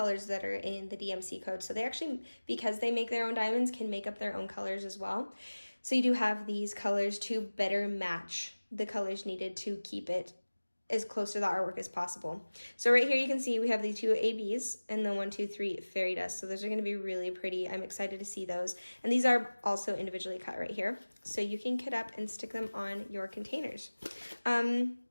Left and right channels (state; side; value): inverted; both; correlation -1.00